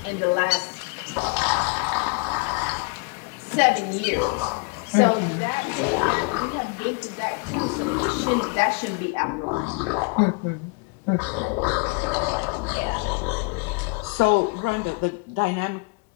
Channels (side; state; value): right; quieter; 31.1 dB